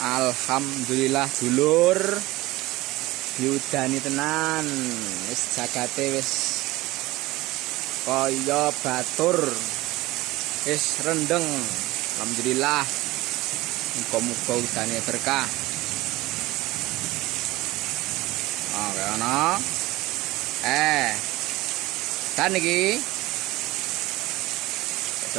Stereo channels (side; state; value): left; quieter; 19.2 dB